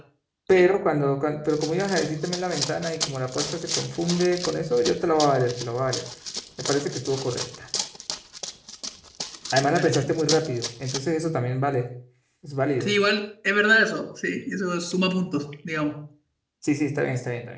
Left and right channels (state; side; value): identical; both; correlation 1.00